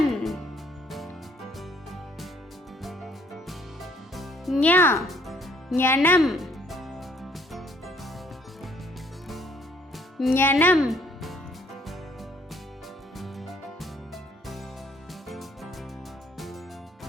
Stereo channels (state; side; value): normal; both; correlation 0.63